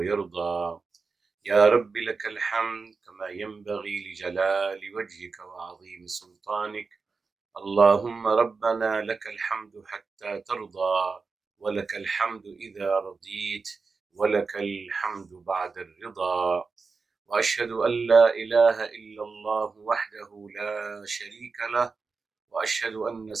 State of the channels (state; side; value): quieter; left; 4.6 dB